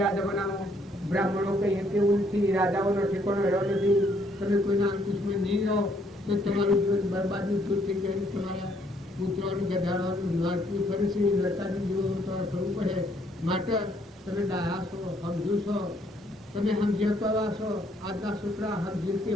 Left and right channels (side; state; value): both; normal; correlation 0.68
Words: આ જમાનામાં બ્રાહ્મણો કઈ કેવું નથી, રાજાઓનો ઠેકાણો રહ્યો નથી. તમે કોઈના અંકુશમાં નહીં રહો તો તમારું જીવન બરબાદની છૂટ થઈ જાય. તમારા પુત્રોનું ગધાડવાનું નડતું ફરે છે, નડતાનું જીવન તમારે થવું પડે. માટે તમે ડાયા છો, સમજુ છો, તમે સમજ્યા છો. આજના છોકરા સમજી